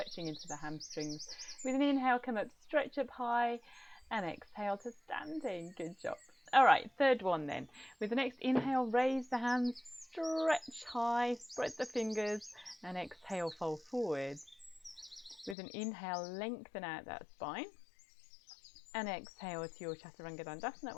into the hamstrings. With an inhale, come up, stretch up high, and exhale to standing. Good job. All right, third one then. With the next inhale, raise the hands, stretch high, spread the fingers, and exhale, fold forward. With an inhale, lengthen out that spine, and exhale to your Chaturanga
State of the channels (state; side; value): drops out; right; at 15.6 s